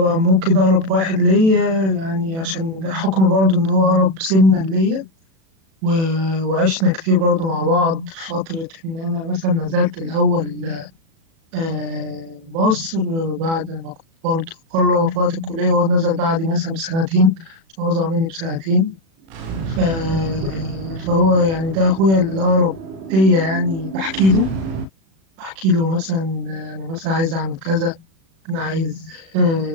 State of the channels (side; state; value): left; late; 36 ms